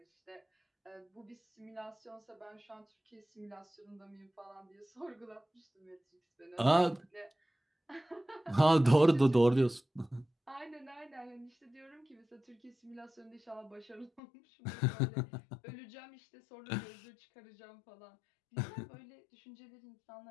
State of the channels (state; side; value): drops out; right; at 14.2 s